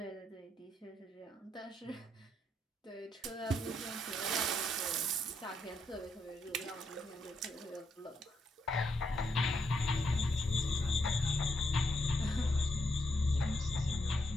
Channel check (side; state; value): both; normal; correlation 0.78